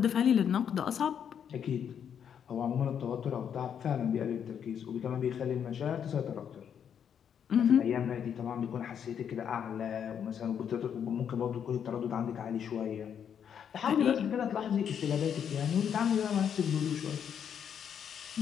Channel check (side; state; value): right; quieter; 8.2 dB